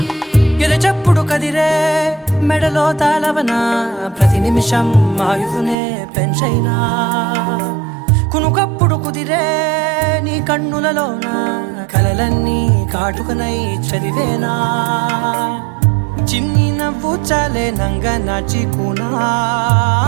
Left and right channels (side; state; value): left; drops out; at 5.8 s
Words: కదిరే మెడలో తాళవన ప్రతి నిమిషం ఆయువునే పెంచైనా కునుకప్పుడు కుదిరే నీ కన్నులలోన కలలన్నీ కాటుకనై చదివేనా చిన్ని నవ్వు చాలే నంగ నాచి